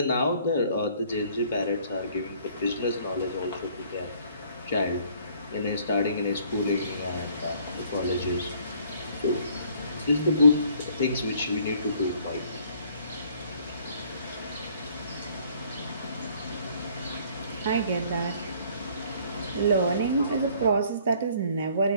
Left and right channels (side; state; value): both; inverted; correlation -0.60